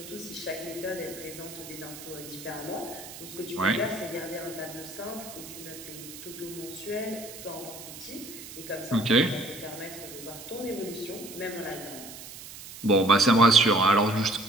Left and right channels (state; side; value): noise; right; hiss, 13 dB below the sound